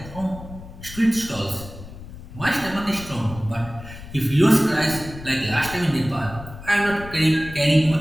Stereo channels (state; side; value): noise; left; rumble, 14 dB below the sound